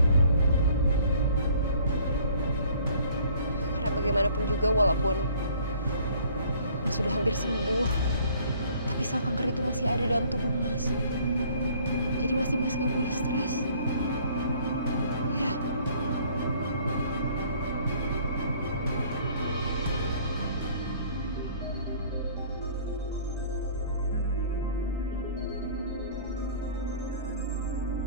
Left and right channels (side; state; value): both; inverted; correlation -0.55